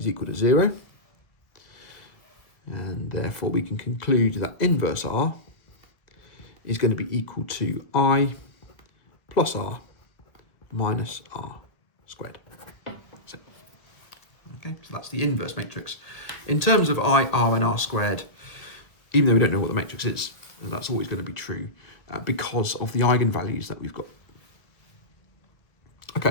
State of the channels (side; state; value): right; late; 1.6 ms